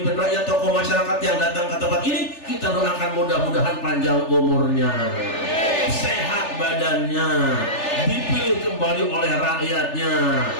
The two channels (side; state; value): right; late; 3.4 ms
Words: rakyat, tokoh masyarakat yang datang ke tempat ini, kita doakan mudah-mudahan panjang umurnya, sehat badannya, dipilih kembali oleh rakyatnya.